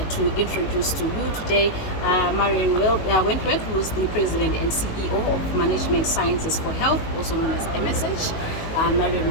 to introduce to you today Marion Wentworth, who is the President and CEO of Management Sciences for Health, also known as MSH. Marion,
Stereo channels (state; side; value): late; right; 19 ms